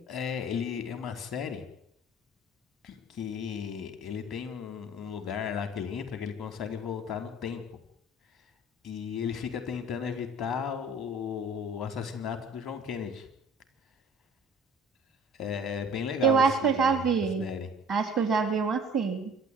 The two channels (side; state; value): both; normal; correlation 0.47